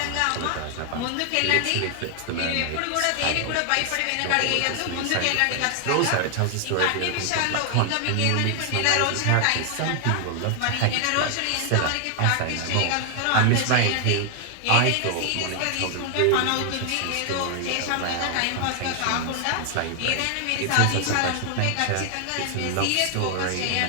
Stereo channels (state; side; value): different; both; correlation 0.00